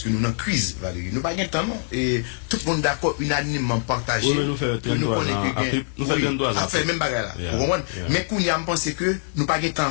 que nous en crise, Valérie. Nous pas de temps, non. Et tout le monde d'accord, unanimement partagé. Oui, mais nous faisons nous fait même bagage là. Mais qu'on y a pensé que nous pas de temps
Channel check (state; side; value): silent; right; digital silence